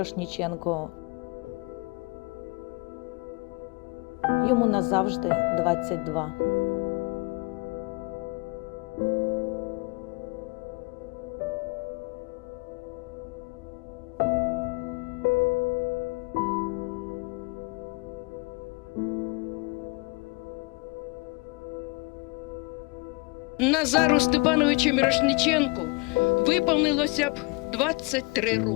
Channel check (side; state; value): right; quieter; 28.2 dB